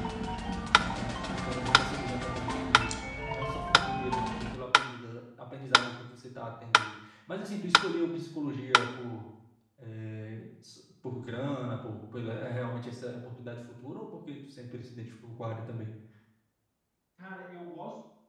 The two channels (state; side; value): identical; both; correlation 1.00